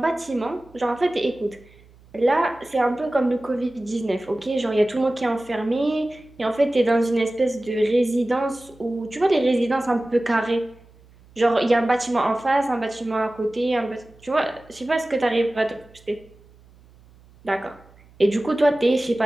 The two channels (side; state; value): right; noise; hum, 27 dB below the sound